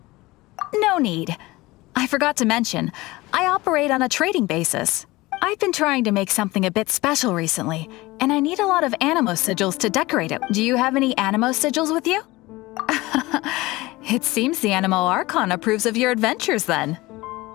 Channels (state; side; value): quieter; right; 20.4 dB